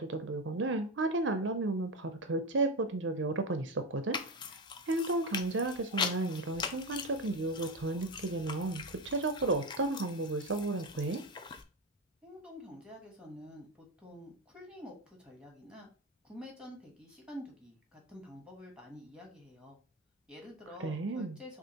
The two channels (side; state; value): both; normal; correlation 0.16